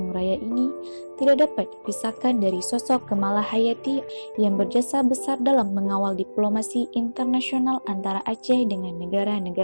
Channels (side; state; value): both; inverted; correlation -1.00